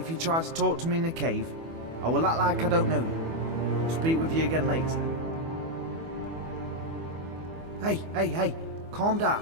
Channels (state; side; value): late; left; 24 ms